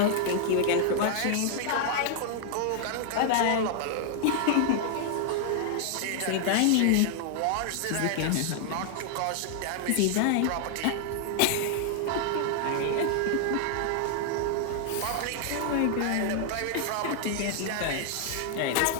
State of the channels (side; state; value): both; different; correlation -0.01